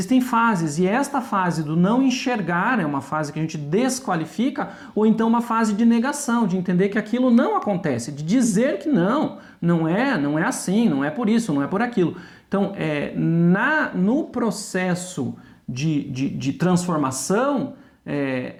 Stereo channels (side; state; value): both; identical; correlation 1.00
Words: fases, e esta fase do não enxergar é uma fase que a gente desqualifica, ou então uma fase de negação, de entender que aquilo não acontece, de dizer que não é assim, não é por isso, não é por aquilo. Então, no processo de transformação,